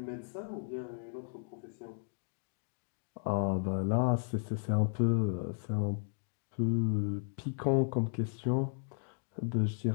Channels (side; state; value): right; silent; digital silence